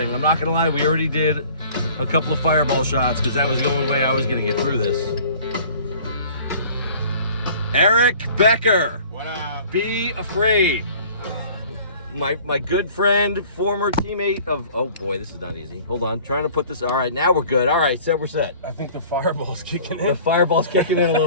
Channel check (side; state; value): both; inverted; correlation -0.49